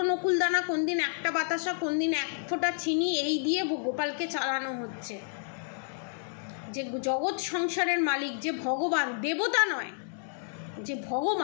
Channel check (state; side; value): silent; right; digital silence